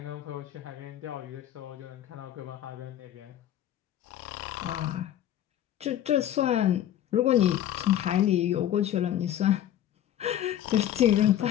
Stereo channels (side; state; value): right; quieter; 11.5 dB